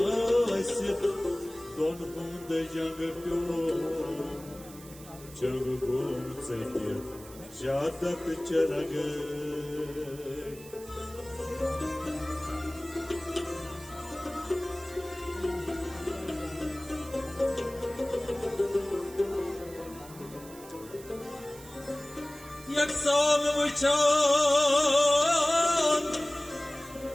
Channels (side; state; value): right; noise; hiss, 18 dB below the sound